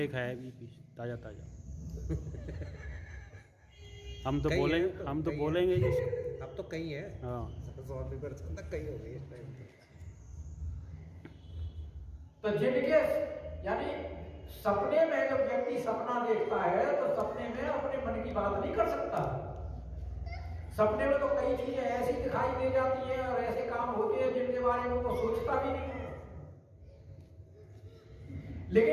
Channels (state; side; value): identical; both; correlation 1.00